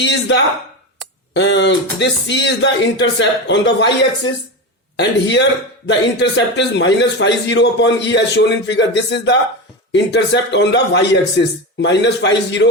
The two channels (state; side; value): normal; both; correlation 0.20